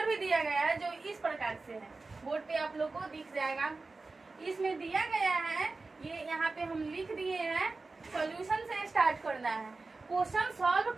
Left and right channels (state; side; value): quieter; left; 3.7 dB